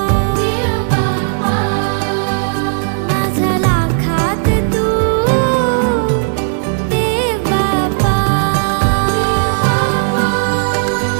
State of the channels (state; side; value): silent; left; digital silence